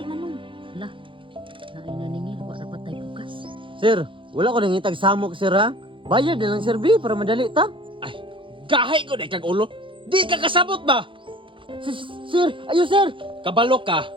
manong. Hala, naay naningil, wa rapat tay bugas. Sir, wala ko nang itag samok, sir, ha? Bayad na lang, sir, B, para madali ta. Gahay ko na kag ulo. Di ka kasabot ba? Sir, ayo, sir. Kabalo ka.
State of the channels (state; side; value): late; left; 0.25 ms